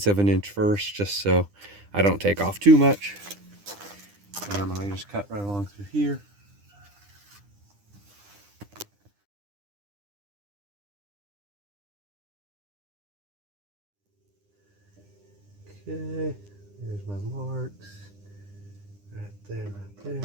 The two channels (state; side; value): late; left; 9.9 ms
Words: of an inch first, just so I don't take off too much. And I'm gonna just cut right along through here. Okay, there's my marks. Right there, right there.